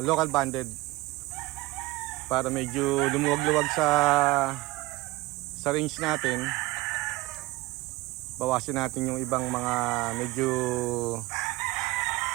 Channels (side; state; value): left; quieter; 20.1 dB